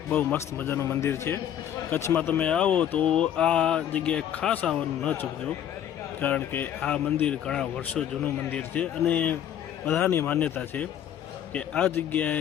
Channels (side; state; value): right; quieter; 10.2 dB